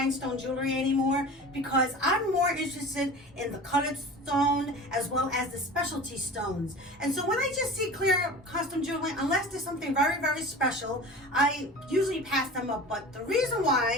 jewelry anymore because I'm more interested in the colored stone as well as the specialty stones. And so when I just see clear custom jewelry, unless there's something very, very special, I usually pass them up. But the reason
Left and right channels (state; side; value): normal; both; correlation 0.37